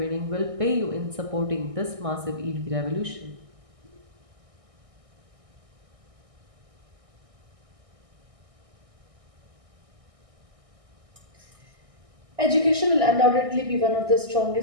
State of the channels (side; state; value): left; late; 1.6 ms